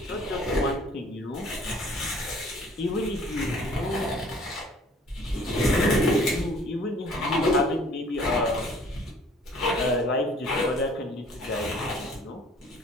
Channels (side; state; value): both; normal; correlation 0.54